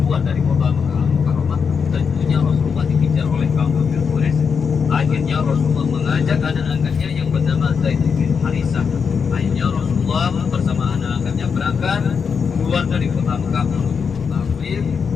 dari kota Makkah Al-Mukarramah, tentunya Rasulullah dikejar oleh kaum kafir Quraisy. Akhirnya Rasulullah mengajak anak angkatnya yang bernama Zaid bin Harithah. Akhirnya Rasulullah bersama anak angkatnya berangkat keluar dari kota Makkah menuju kota Taif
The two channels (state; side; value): quieter; right; 6.1 dB